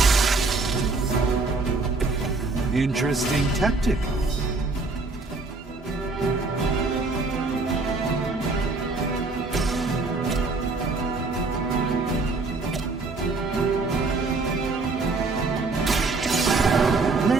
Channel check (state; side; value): quieter; left; 3.7 dB